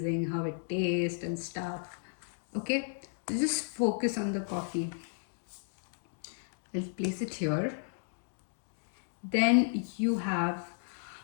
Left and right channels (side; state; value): right; silent; digital silence